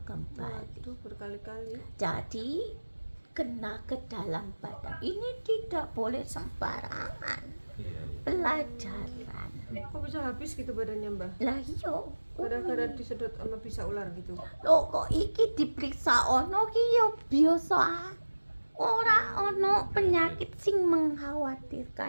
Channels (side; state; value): both; inverted; correlation -1.00